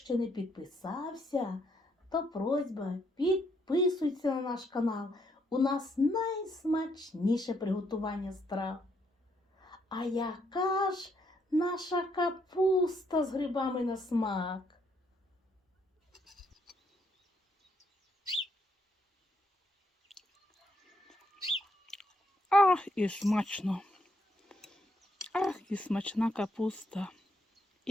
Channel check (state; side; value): normal; both; correlation 0.73